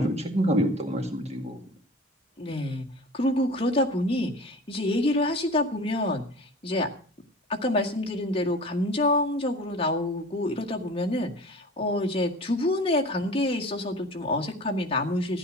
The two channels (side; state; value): both; normal; correlation 0.39